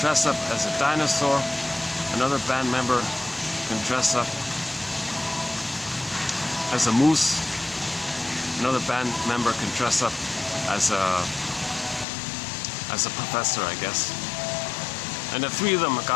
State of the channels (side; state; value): right; drops out; at 12.1 s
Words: up as a dinosaur, another band member can dress up as a moose, another band member can dress up as a professor, I guess. And the three of them have